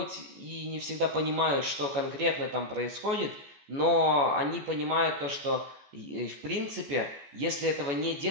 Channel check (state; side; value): late; left; 14 ms